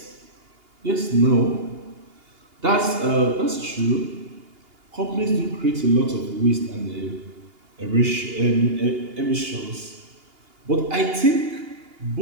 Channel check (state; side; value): late; left; 2.8 ms